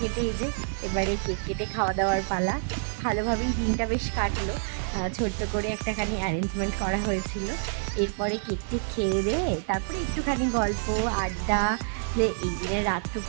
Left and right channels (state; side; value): silent; left; 60 dB below the other